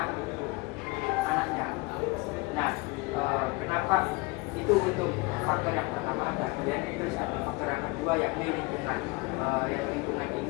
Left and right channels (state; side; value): quieter; right; 25.4 dB